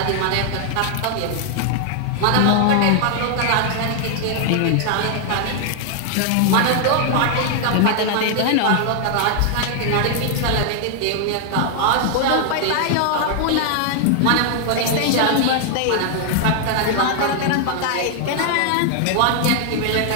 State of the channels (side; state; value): both; different; correlation 0.00